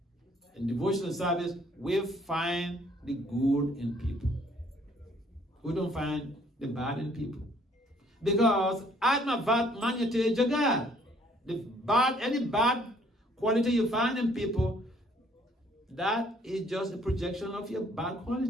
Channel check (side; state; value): both; normal; correlation 0.62